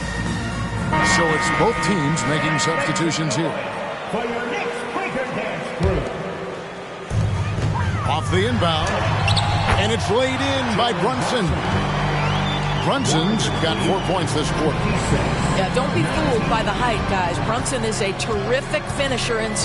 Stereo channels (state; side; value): identical; both; correlation 1.00